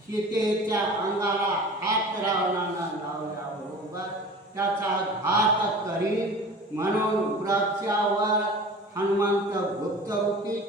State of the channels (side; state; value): both; normal; correlation 0.39